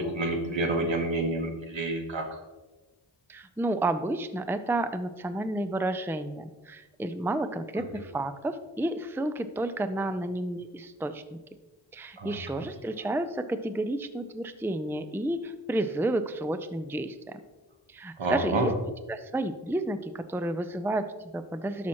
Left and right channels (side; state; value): both; normal; correlation 0.57